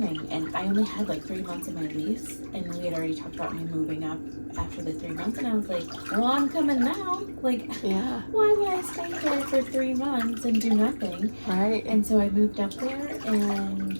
And I only had like 3 months of my lease, and we had already talked about me moving up after the 3 months, and I was like, well, I'm coming now. Like, Yeah. why would I stay there for 3 months and do nothing? Right. And so I moved up there, and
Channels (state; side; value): inverted; both; correlation -1.00